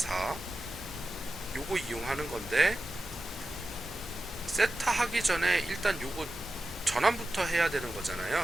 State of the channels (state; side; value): normal; both; correlation 0.93